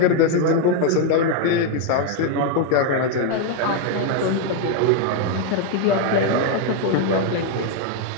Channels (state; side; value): different; both; correlation 0.01